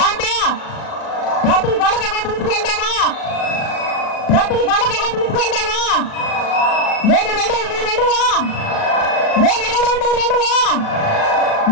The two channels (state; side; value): late; right; 37 ms